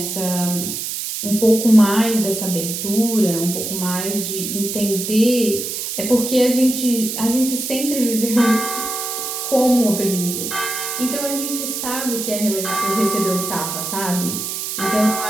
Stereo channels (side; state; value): right; noise; hiss, 4 dB below the sound